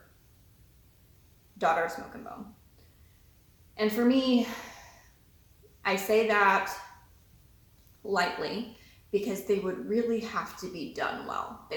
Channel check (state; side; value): identical; both; correlation 1.00